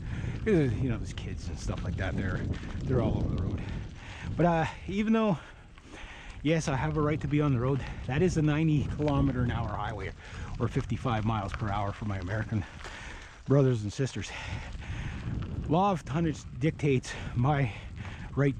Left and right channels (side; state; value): both; identical; correlation 1.00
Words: You know, there's kids and stuff like that. They're all over the road. But even though, yes, I have a right to be on the road, that is a 90-kilometer-an-hour highway, or 55 miles per hour for my American brothers and sisters. Law of tonnage dictates my right